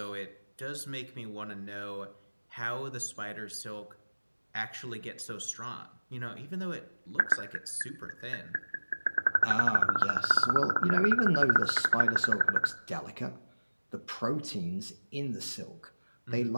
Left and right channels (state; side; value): inverted; both; correlation -1.00